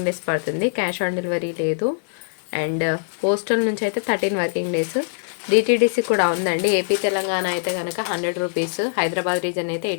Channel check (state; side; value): silent; right; digital silence